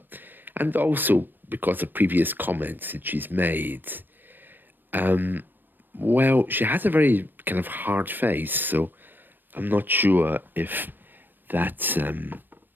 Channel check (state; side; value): late; left; 0.093 ms